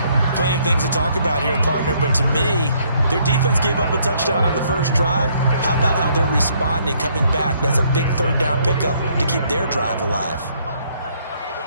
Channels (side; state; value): both; inverted; correlation -0.67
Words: Plenty of things to talk about here, partner, but to me, their defense gave up a touchdown on the 1st drive. How about how they're responding, coming back? That's a big 3rd down pickup to keep their drive alive.